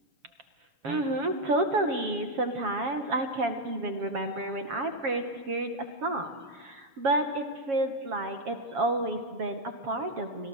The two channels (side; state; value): left; late; 7.3 ms